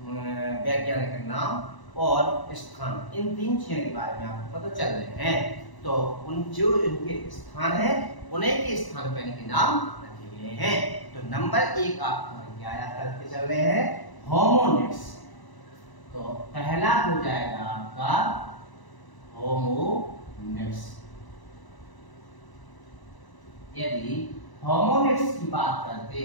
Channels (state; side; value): late; right; 1.0 ms